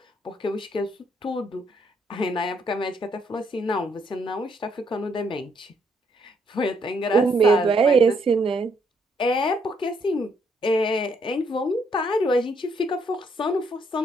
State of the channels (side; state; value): both; normal; correlation 0.71